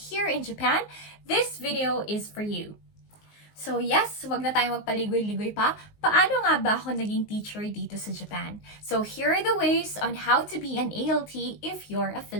in Japan, this video is for you. So yes, wag na tayo magpaligoy-ligoy pa. Paano nga ba ako naging teacher dito sa Japan? So here are the ways on how to be an ALT if you're a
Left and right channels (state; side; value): late; right; 19 ms